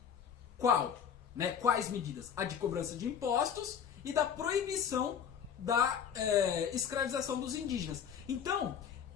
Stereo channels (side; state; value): right; quieter; 7.9 dB